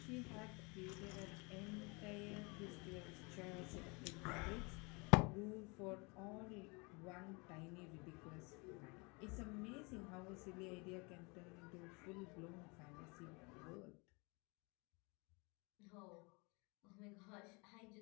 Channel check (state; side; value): quieter; right; 29.3 dB